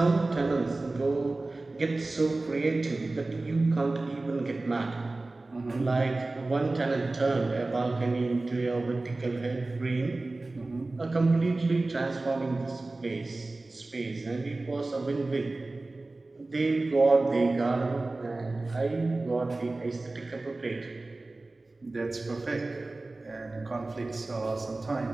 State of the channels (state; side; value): quieter; left; 3.1 dB